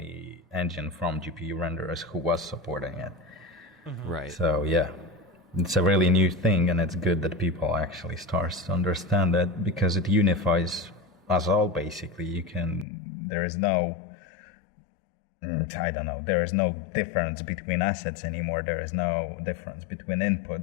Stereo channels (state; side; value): drops out; right; at 12.9 s